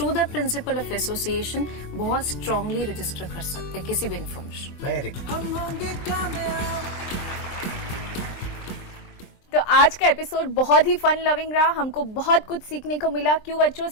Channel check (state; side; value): late; right; 23 ms